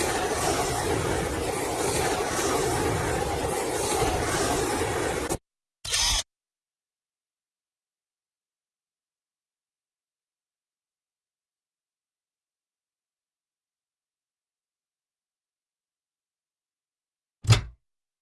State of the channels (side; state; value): both; identical; correlation 1.00